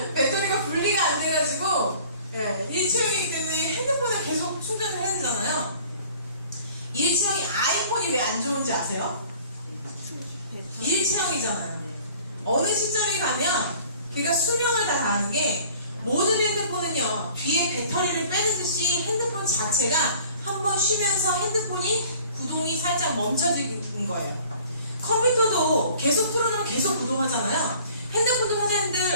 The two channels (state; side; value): inverted; both; correlation -0.50